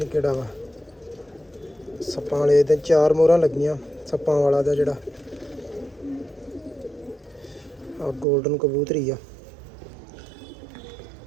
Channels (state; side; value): drops out; left; at 8.2 s